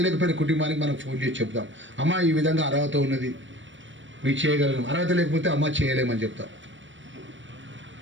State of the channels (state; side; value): late; left; 0.55 ms